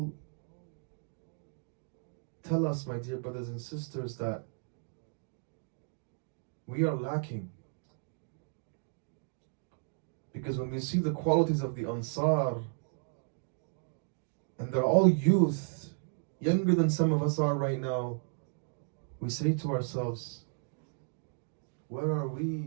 tell us, my dear brothers and sisters, that we are lacking. Because when we see the qualities of the Ansar, and they're all youth, younger than some of us are right now, we say to ourselves, where are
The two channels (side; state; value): left; silent; 55 dB below the other